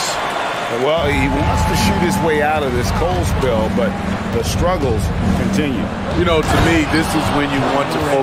Well, he wants to shoot his way out of this cold spell, but the struggles continue. You know, to me, this is when you want to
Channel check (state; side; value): identical; both; correlation 1.00